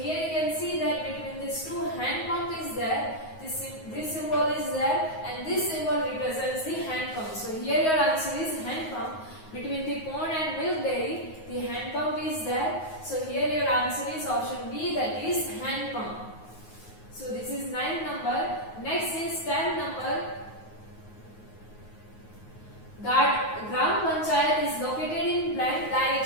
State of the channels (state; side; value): late; right; 9.4 ms